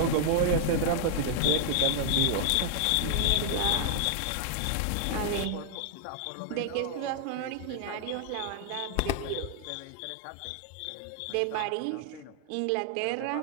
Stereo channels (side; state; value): both; different; correlation 0.00